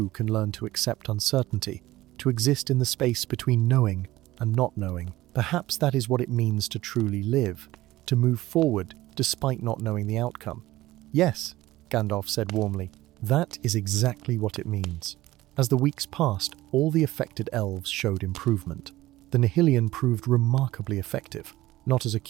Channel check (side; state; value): left; quieter; 16.9 dB